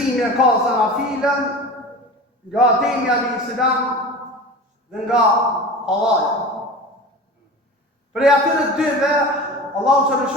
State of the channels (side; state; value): both; normal; correlation 0.34